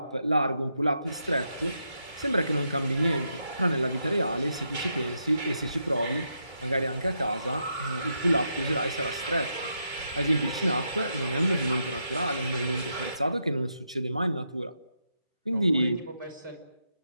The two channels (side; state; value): both; inverted; correlation -0.82